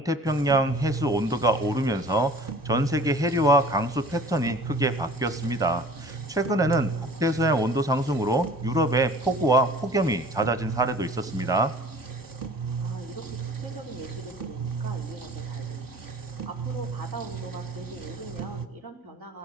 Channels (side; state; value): both; normal; correlation 0.47